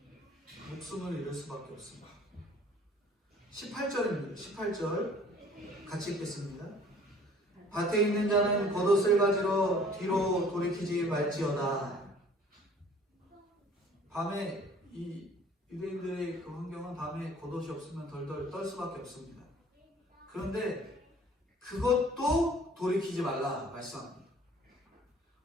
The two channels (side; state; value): both; normal; correlation 0.52